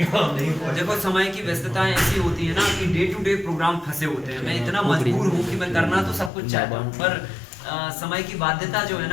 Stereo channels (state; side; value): drops out; right; at 6.3 s